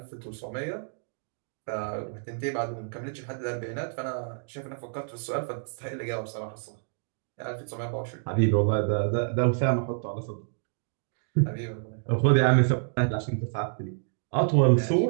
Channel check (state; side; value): silent; left; digital silence